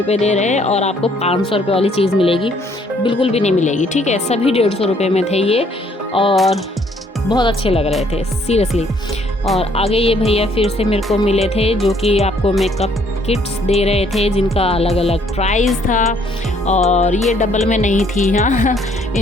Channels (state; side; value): normal; both; correlation 0.65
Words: दे रहे हैं और आपको 500 रुपये वाली चीज़ मिलेगी, बिल्कुल भी नहीं मिलेगी, ठीक है। सभी 150 रुपये में थे ये और बहुत अच्छे लग रहे थे सीरियसली। और आगे ये भैया फिर से मेरे को मिले थे जो कि आपको मेकअप किट्स दे रहे थे जिनका अलग अलग प्राइस था। और ये डबल में नहीं थी, हाँ